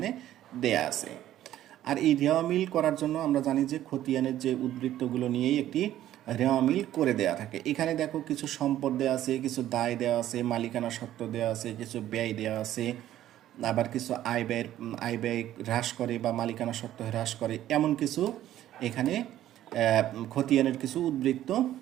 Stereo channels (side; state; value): left; quieter; 12.8 dB